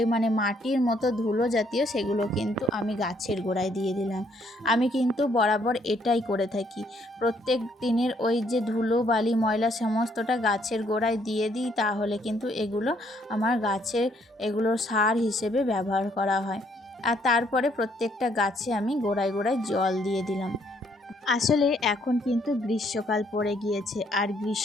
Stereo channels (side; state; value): both; normal; correlation 0.68